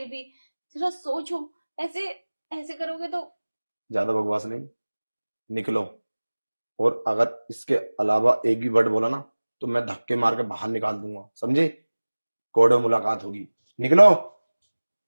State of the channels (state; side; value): inverted; both; correlation -1.00